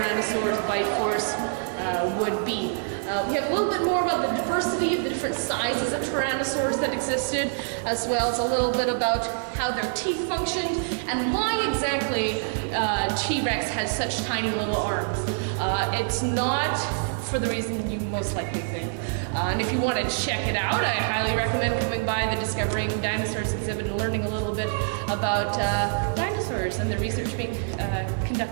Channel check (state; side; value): silent; left; digital silence